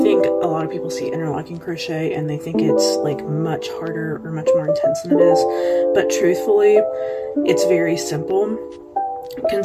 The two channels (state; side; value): identical; both; correlation 1.00